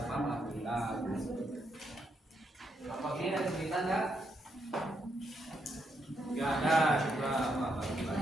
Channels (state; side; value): normal; both; correlation 0.79